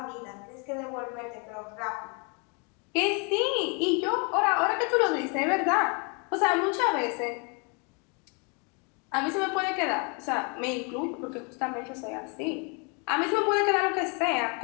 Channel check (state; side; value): quieter; right; 34.4 dB